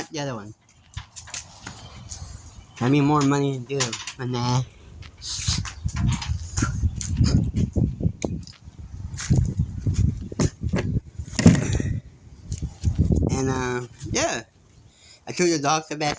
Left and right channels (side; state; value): both; identical; correlation 1.00